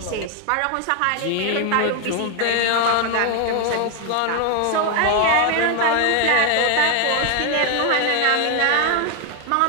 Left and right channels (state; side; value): different; both; correlation 0.01